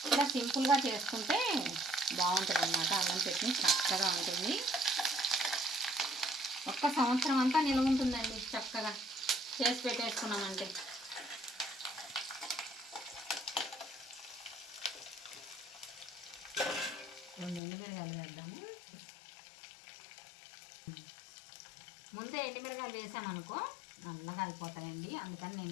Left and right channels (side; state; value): right; drops out; at 17.6 s